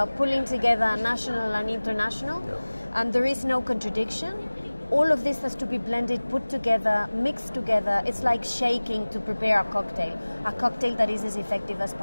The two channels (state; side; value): inverted; both; correlation -1.00